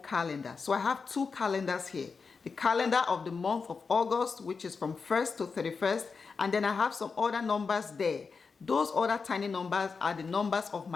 So I have two calendars here. The calendar of the month of August, which is from 1st to 31st, and then I have some other numbers there. Those other tiny numbers are the numbers of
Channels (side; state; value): right; quieter; 5.0 dB